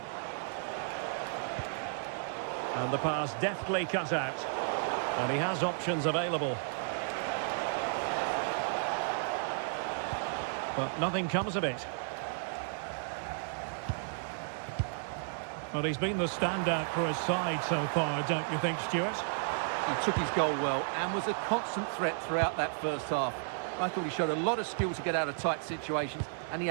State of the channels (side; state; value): left; silent; digital silence